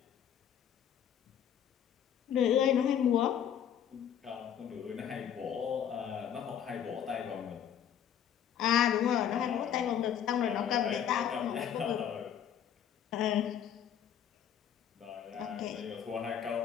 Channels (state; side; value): quieter; right; 9.2 dB